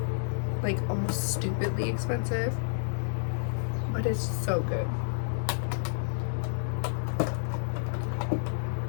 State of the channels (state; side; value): silent; right; 58 dB below the other